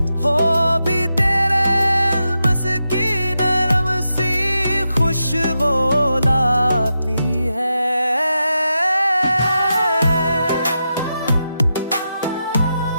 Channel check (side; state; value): both; inverted; correlation -0.87